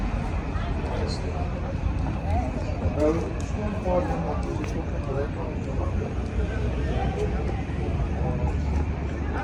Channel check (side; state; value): both; identical; correlation 1.00